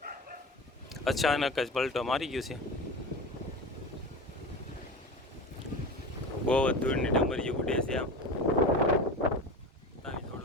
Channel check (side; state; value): both; normal; correlation 0.30